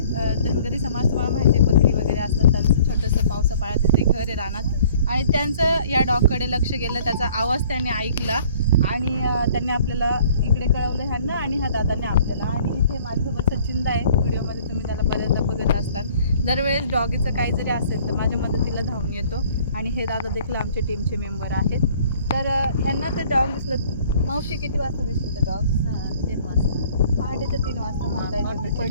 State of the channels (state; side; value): inverted; both; correlation -0.55